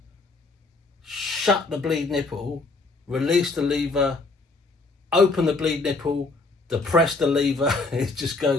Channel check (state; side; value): quieter; right; 3.5 dB